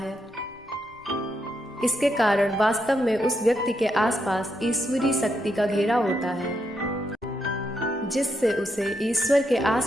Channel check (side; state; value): both; normal; correlation 0.80